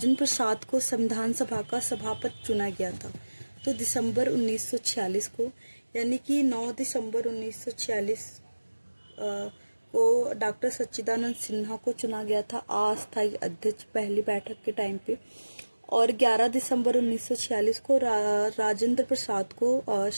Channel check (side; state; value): both; inverted; correlation -1.00